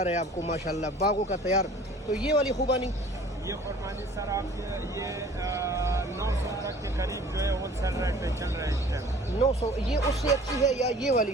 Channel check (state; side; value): normal; both; correlation 0.49